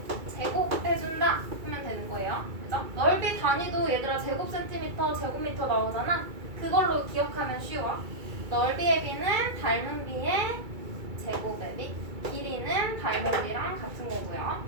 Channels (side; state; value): left; late; 2.3 ms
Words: 제곱해준다 하면 되는 거예요. 그죠? 넓이 단위도 얘들아 제곱센티미터, 제곱미터 나오잖아. 그걸로 기억하면 쉬워. 넓이의 B는 닮은 B의 제곱의 B, 길이는 닮은 B랑 같은 거고요.